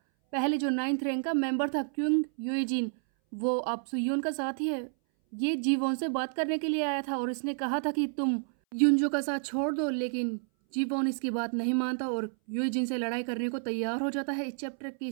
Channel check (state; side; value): silent; left; 58 dB below the other